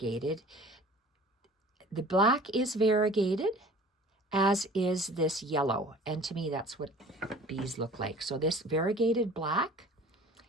The black is variegated, as is this yellow. And to me, that's what bees look like. So this variegated black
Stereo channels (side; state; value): both; normal; correlation 0.46